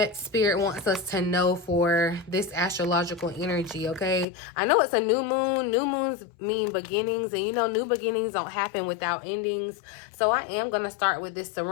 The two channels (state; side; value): drops out; right; at 4.2 s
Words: Spirit wants us to know for this astrological energy, okay? I know it's a new moon. New moons mean beginnings, and you know, new beginnings don't happen without endings. So I am going to start with this